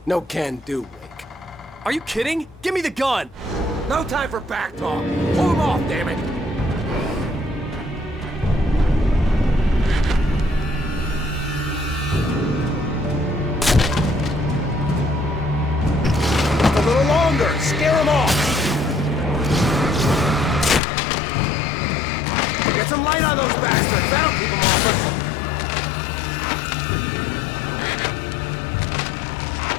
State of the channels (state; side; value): drops out; right; at 20.8 s